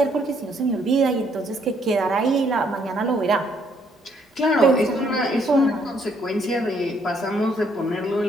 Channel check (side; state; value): both; normal; correlation 0.69